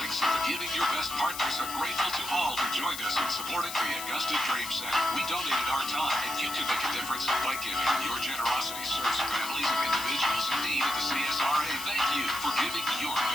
giving your best partners are grateful to all who joined us in supporting the Augusta Dream Center. We donated our time, and you can make a difference by giving. Your generosity serves families and individuals in need of the CSRA. Thank you for giving your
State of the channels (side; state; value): left; noise; hiss, 9 dB below the sound